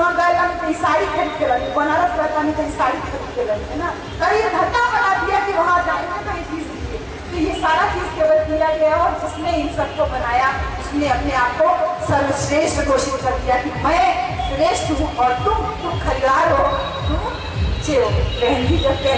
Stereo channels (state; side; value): identical; both; correlation 1.00